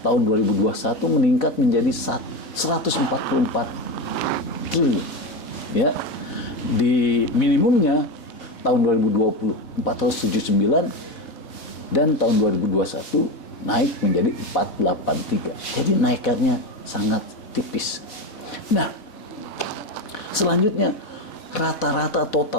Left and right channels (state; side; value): late; right; 4.1 ms